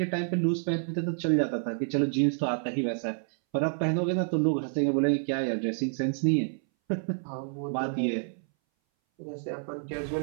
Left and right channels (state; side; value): silent; left; 59 dB below the other